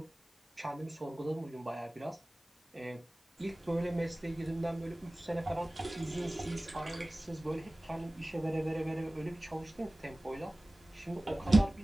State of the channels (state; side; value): normal; both; correlation 0.98